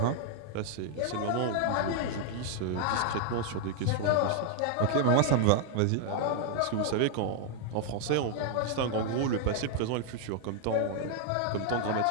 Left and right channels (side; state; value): both; different; correlation 0.00